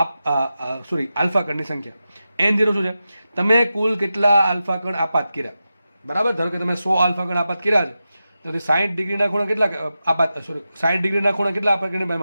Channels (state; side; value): inverted; both; correlation -0.91